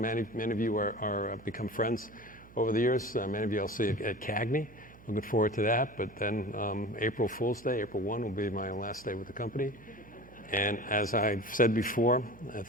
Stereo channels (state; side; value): noise; right; hum, 22 dB below the sound